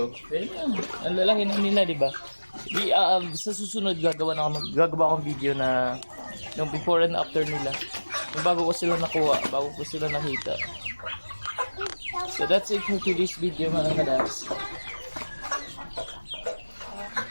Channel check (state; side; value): inverted; both; correlation -1.00